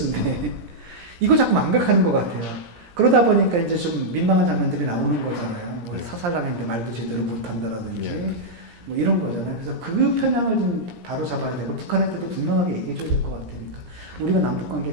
이거 자꾸 망각하는 것 같아요. 그러다 보니까 이제 좀 민망한 장면들이 나오는 거잖아요. 뭐 예. 사살당했는데 말도 제대로 못한다라든지 예. 뭐 이런 거잖아요. 그래서 그 편향을 좀 바로 잡아야 되고 북한한테도 분명하게 얘기해줘야 될 것 같으니까 우리가 남북 관계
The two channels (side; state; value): left; late; 17 ms